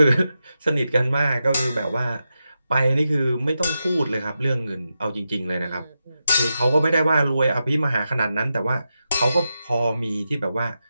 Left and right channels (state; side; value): inverted; both; correlation -0.89